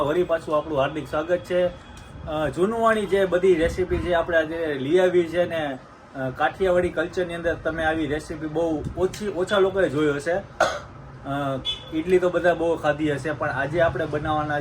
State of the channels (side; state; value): both; identical; correlation 1.00